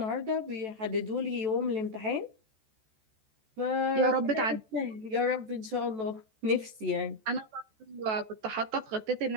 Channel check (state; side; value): late; left; 14 ms